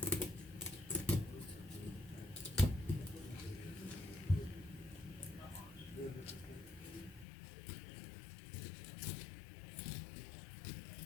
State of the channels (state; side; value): drops out; right; at 7.2 s